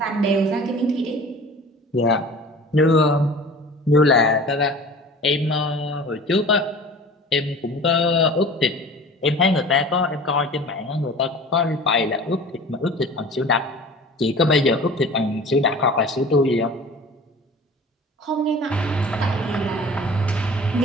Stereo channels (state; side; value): normal; both; correlation 0.41